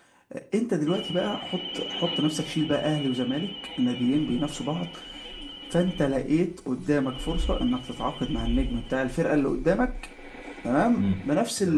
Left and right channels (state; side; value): identical; both; correlation 1.00